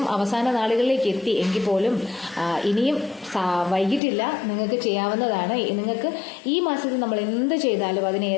അവസാന നാളുകളിലേക്ക് എത്തി എങ്കിൽ പോലും ഇനിയും വൈകിട്ടില്ല, നിങ്ങൾക്ക് ചെയ്യാവുന്നതാണ്. നിങ്ങൾക്ക് ഈ മാസത്തിൽ നമ്മൾ എന്ത് ചെയ്താലും അതിന്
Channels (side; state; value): right; drops out; at 4.0 s